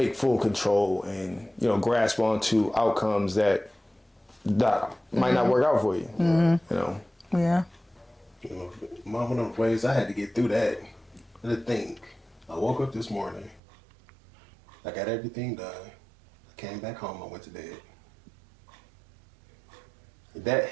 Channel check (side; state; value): left; drops out; at 13.6 s